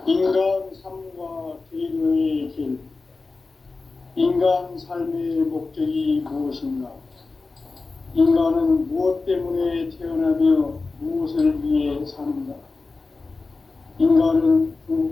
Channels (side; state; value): right; quieter; 3.8 dB